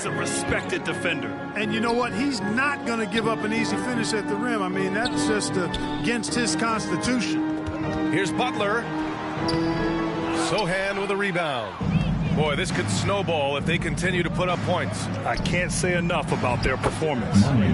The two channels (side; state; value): both; identical; correlation 1.00